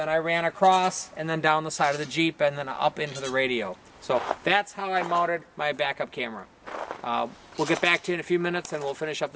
I ran across and then down the side of the Jeep and then up into the radio. So that's how I mounted my backup camera. We'll get back to you in a few minutes and we'll finish up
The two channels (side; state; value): both; identical; correlation 1.00